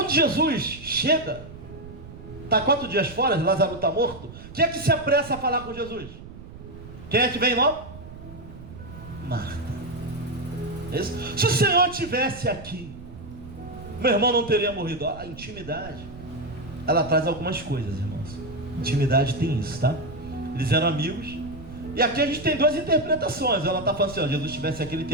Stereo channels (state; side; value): noise; right; rumble, 15 dB below the sound